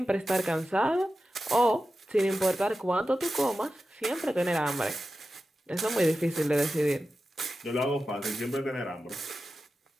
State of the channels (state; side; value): normal; both; correlation 0.93